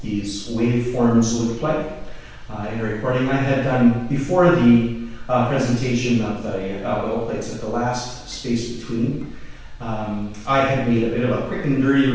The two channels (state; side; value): identical; both; correlation 1.00